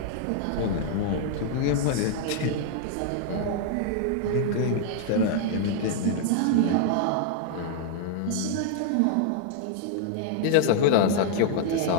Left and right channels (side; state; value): both; different; correlation 0.00